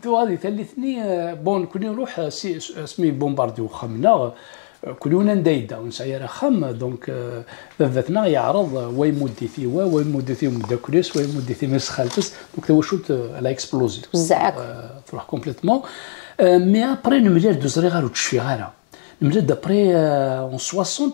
تو غادي ثلثني بون كوني نروح اسمي بومبارديو خمنا كلنا ندايدا ونسعير خم دونك بابتنا يعرض ويمودي في ويمودي في مداكريس ويمودي في مسخالتس دونك تو شوت على اكسبلوزي تروح كومبليتمون مي ابري نملير دوزري غير وتشفي غيرها نملير دابري اون 60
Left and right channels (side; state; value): right; silent; digital silence